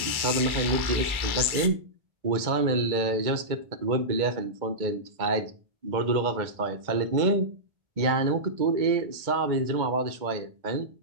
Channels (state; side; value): late; left; 1.1 ms